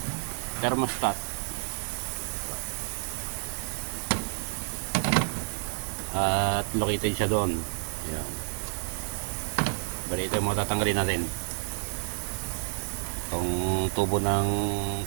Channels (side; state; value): left; silent; 57 dB below the other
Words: thermostat. At located siya doon. Ayan. Bali ito yung mga tatanggalin natin. Itong tubo ng